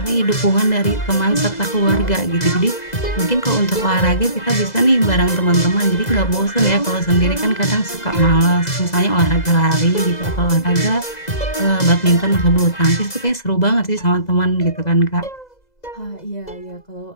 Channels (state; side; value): late; right; 2.0 ms